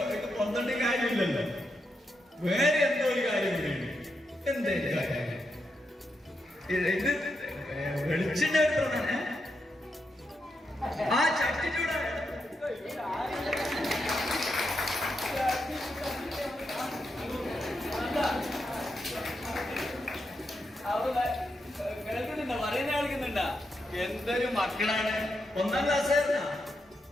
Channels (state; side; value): normal; both; correlation 0.84